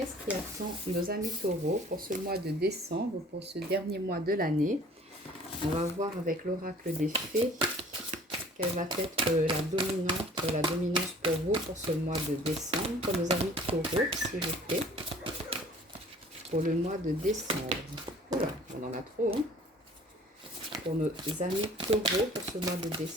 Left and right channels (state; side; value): normal; both; correlation 0.51